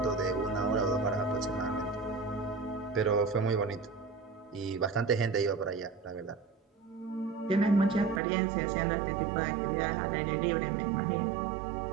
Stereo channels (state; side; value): drops out; left; at 8.2 s